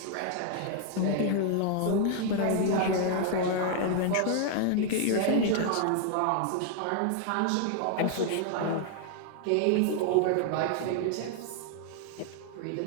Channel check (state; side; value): different; both; correlation 0.00